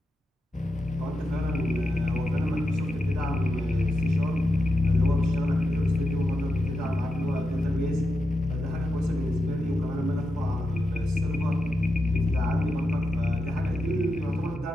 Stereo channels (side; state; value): both; normal; correlation 0.87